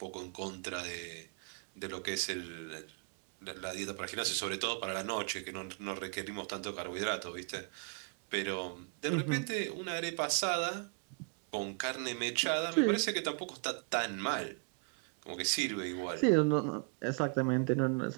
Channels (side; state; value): left; quieter; 39.6 dB